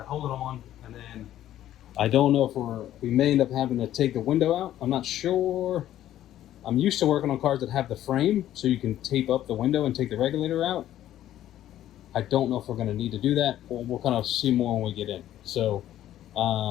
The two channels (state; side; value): quieter; right; 12.5 dB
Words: hold it on, and then I don't know if we may end up having to take the window out. I'm not sure. I'm used to working on cars that have the frame, so you can tape up the window and take the regulator out. I don't know if we're going to need to do that, or we'll kind of see more when we get in. So,